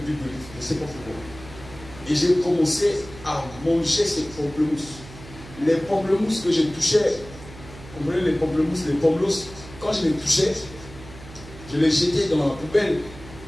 d'olive. Je ne sais pas pourquoi. Et j'ai commencé à manger ces pamplemousses. Les pamplemousses que je touchais, vous comprenez, les pamplemousses, les pommelos, quand je les touchais, je les jetais dans la poubelle.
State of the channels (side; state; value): right; noise; hum, 17 dB below the sound